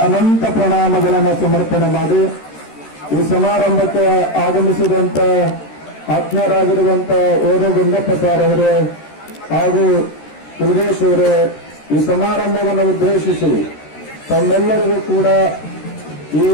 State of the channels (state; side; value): late; right; 13 ms